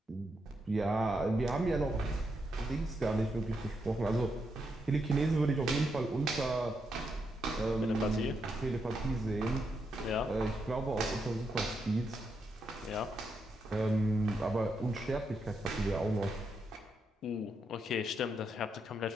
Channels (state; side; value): normal; both; correlation 0.82